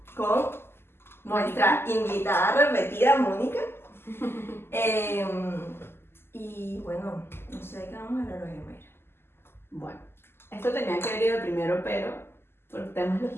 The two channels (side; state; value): right; late; 0.12 ms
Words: con nuestra invitada repetida, Mónica. Y bueno, no sé de qué vamos a hablar hoy, Mayra. Bueno, esto tenía que haber ido primero, pero por temas